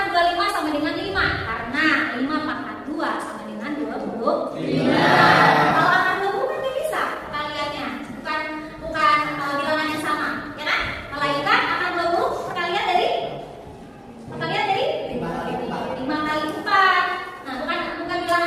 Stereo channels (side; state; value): both; identical; correlation 1.00